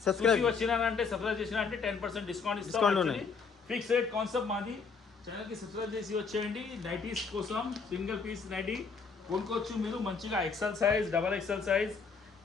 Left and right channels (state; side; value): quieter; right; 5.2 dB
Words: చూసి వచ్చినారంటే సబ్స్క్రైబ్ చేసినారంటే 10% డిస్కౌంట్ ఇస్తాం. ఫిక్స్ రేట్ కాన్సెప్ట్ మాది. ఛానల్ కి సబ్స్క్రైబ్ చేసి వచ్చేయండి. నైటీస్ కోసం సింగిల్ పీస్ నైటీ కొనుక్కోవచ్చు మీరు మంచిగా. XL size, double XL size,